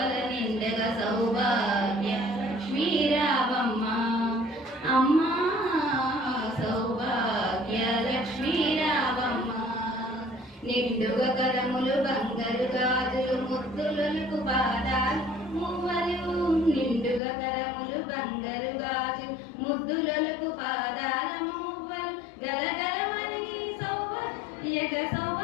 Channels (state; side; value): drops out; right; at 17.2 s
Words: నిండగా సౌభాగ్య లక్ష్మీ రావమ్మ. అమ్మా సౌభాగ్య లక్ష్మీ రావమ్మ. నిండుగా కరములు బంగారు గాజులు ముద్దులకు పాదాలు మువ్వలు. నిండుగా కరములు బంగారు గాజులు ముద్దులకు పాదాల మువ్వలు. గలగలమని